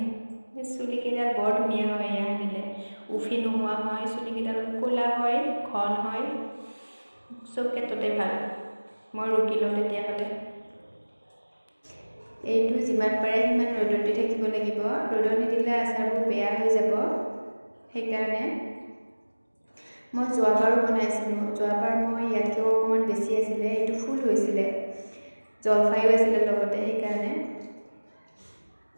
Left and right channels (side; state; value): both; inverted; correlation -1.00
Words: চুলিকেইডাল বৰ ধুনীয়া হয় এয়া সানিলে, উফি নোহোৱা হয়, চুলিকেইডাল ক'লা হয়, ঘন হয়, চব ক্ষেত্ৰতে ভাল। মই ৰুকি লওঁ তেতিয়াহ'লে। এইটো যিমান পাৰে সিমান ৰ'দত দি থাকিব লাগিব, ৰ'দত নিদিলে আচাৰবোৰ বেয়া হৈ যাব। সেইকাৰণে মই যোৱাবাৰো বনাইছিলোঁ, যোৱাবাৰ মই ইয়াতকৈও অকণমান বেছি আছিলে, এইটো ফুল হৈছিলে, জলফাইও আছিলে লগতে। সেইকাৰণে